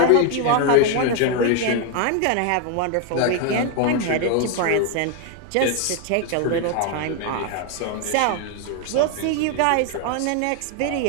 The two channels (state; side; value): different; both; correlation 0.01